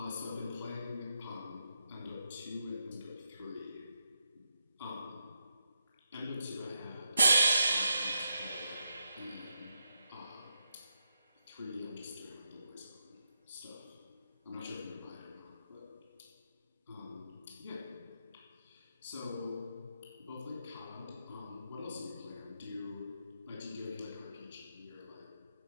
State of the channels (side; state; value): both; inverted; correlation -0.84